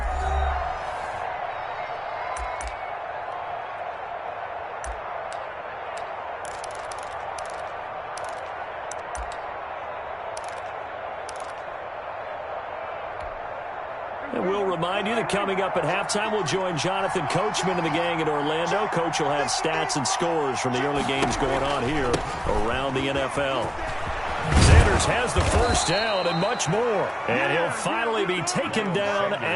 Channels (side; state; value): both; identical; correlation 1.00